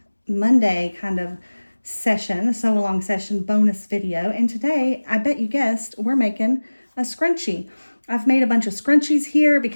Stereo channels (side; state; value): both; inverted; correlation -1.00